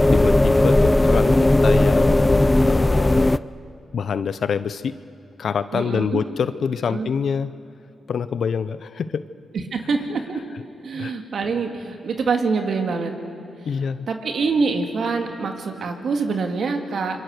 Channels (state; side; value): normal; both; correlation 0.91